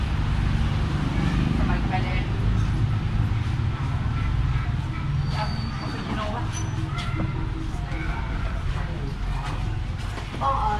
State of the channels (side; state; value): both; identical; correlation 1.00